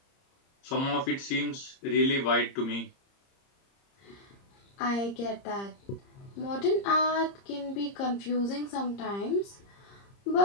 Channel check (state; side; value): late; right; 30 ms